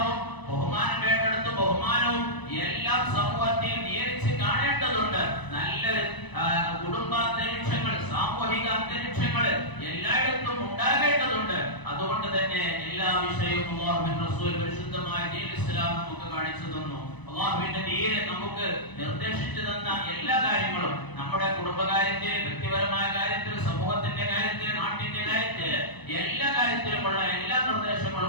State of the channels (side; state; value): right; late; 1.0 ms